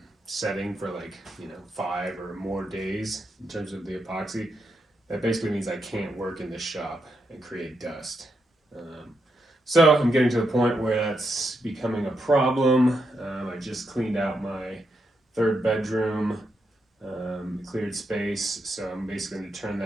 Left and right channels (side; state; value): both; normal; correlation 0.82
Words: setting for like 5 or more days in terms of the epoxy, that basically means I can't work in the shop and create dust. So I'm getting to the point where that's becoming a problem. I just cleaned out my third bedroom, cleared space, so I'm basically going to turn